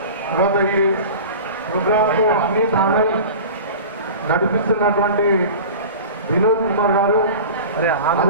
తర్వాత ఈ ప్రోగ్రాంకు అన్ని తానల్ నడిపిస్తున్నటువంటి వినోద్ కుమార్ గారు,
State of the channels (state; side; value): inverted; both; correlation -0.35